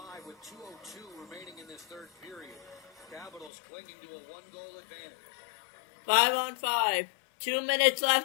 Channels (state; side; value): drops out; right; at 3.5 s